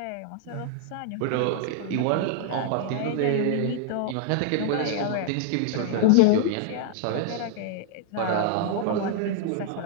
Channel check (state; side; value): different; both; correlation -0.01